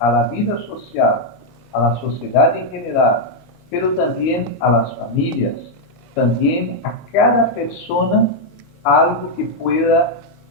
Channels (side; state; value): both; normal; correlation -0.01